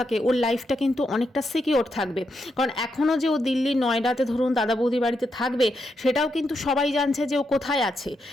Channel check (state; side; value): normal; both; correlation 0.82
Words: ওর লাইফটা কিন্তু অনেকটা সিকিওর থাকবে। কারণ এখনও যে ও দিল্লি নয়ডাতে ধরুন দাদা বৌদির বাড়িতে থাকবে, থাকবে সেটাও কিন্তু সবাই জানছে যে ও কোথায় আছে।